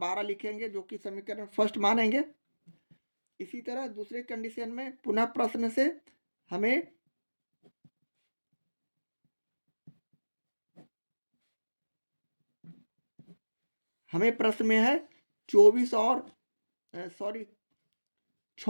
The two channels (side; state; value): both; inverted; correlation -1.00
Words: लिखेंगे, जो कि समीकरण फर्स्ट मानेंगे। इसी तरह दूसरे कंडीशन में पुनः प्रश्न से हमें प्रश्न में है 24 और